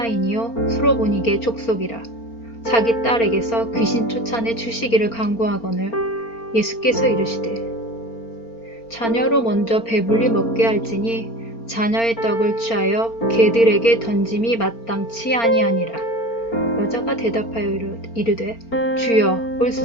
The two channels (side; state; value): right; late; 4.4 ms